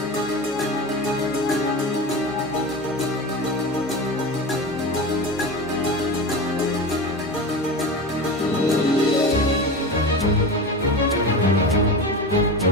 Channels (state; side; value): normal; both; correlation 0.27